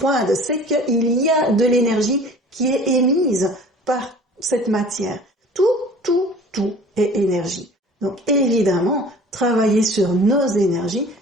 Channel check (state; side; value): normal; both; correlation 0.46